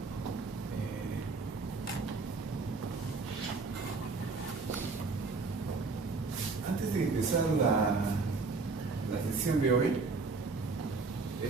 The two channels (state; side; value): quieter; left; 4.1 dB